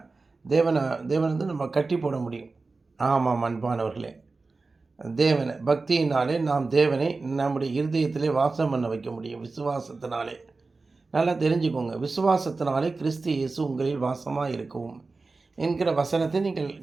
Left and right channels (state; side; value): quieter; left; 3.8 dB